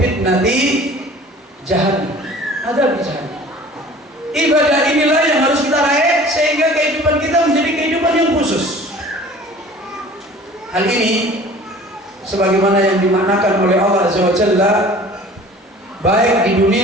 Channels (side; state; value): both; normal; correlation 0.46